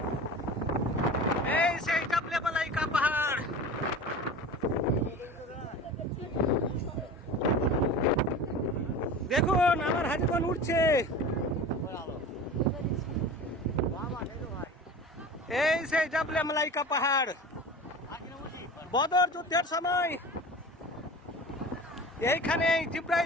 এই সেই জাবলে মালাইকা পাহাড়। দেখুন আমার হাজিগণ উঠছে। এই সেই জাবলে মালাইকা পাহাড়। বদর যুদ্ধের সময় এইখানে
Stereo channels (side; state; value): both; normal; correlation 0.35